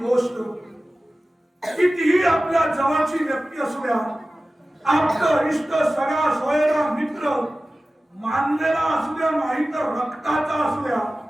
कितीही आपल्या जवळची व्यक्ती असू द्या, आपलं इष्ट, सगळा सोयरा मित्र, मानलेला असू द्या नाही तर रक्ताचा असू द्या,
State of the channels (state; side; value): normal; both; correlation 0.96